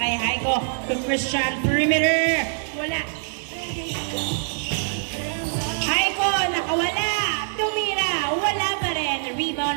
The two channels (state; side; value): silent; left; digital silence